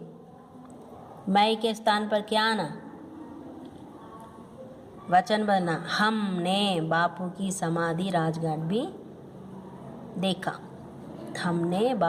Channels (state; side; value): identical; both; correlation 1.00